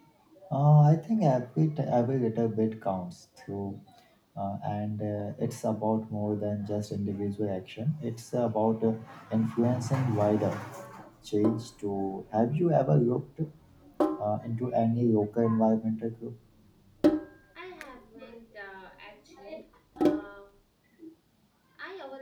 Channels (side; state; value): both; identical; correlation 1.00